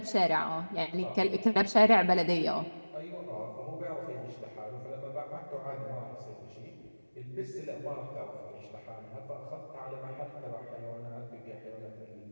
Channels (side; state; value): both; inverted; correlation -1.00